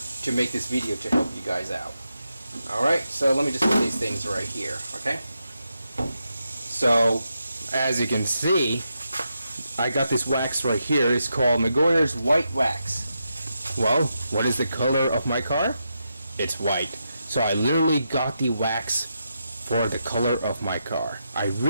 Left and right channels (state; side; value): inverted; both; correlation -0.85